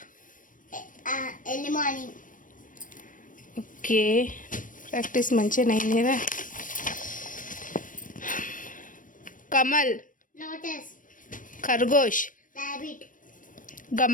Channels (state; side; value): late; right; 0.38 ms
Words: early morning, ఓకే, ప్రాక్టీస్ మంచిగా అయింది కదా. कमल, lotus, खरगोश, rabbit,